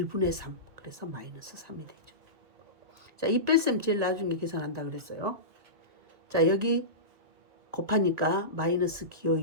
3. 그래서 마이너스 3이 되죠. 자, 이 뺄셈 제일 나중에 계산한다 그랬어요. 자, 여기 곱하니까 마이너스 기호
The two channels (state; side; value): late; left; 1.9 ms